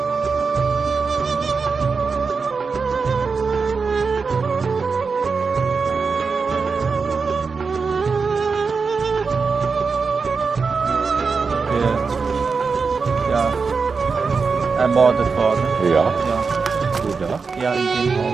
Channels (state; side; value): quieter; left; 4.9 dB